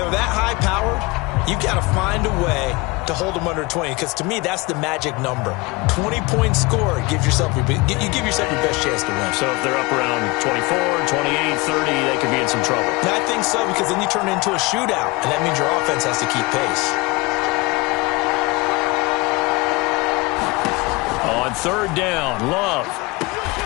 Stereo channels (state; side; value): quieter; right; 24.2 dB